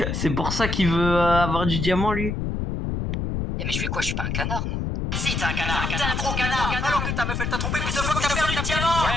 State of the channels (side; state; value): left; noise; rumble, 2 dB below the sound